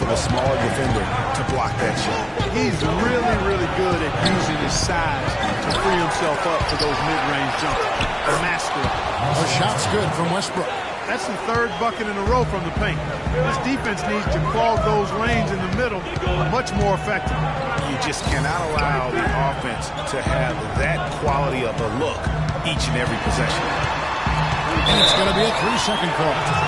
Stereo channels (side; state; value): both; identical; correlation 1.00